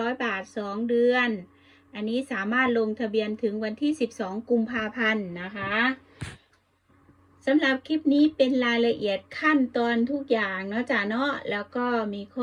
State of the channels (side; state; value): both; identical; correlation 1.00